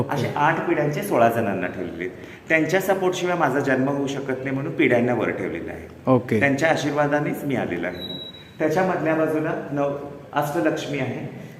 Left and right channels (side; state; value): both; identical; correlation 1.00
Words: असे 8 पिढ्यांचे 16 जणांना ठेवलेले आहेत. त्यांच्या सपोर्ट शिवाय माझा जन्म होऊ शकत नाही म्हणून पिढ्यांना वर ठेवलेलं आहे. ओके. त्यांच्या आशीर्वादानेच मी आलेलो आहे. त्याच्या मधल्या बाजूला अष्टलक्ष्मी आहे.